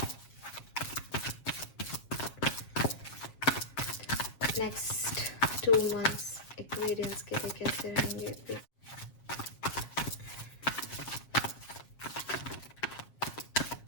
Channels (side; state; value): right; late; 7.6 ms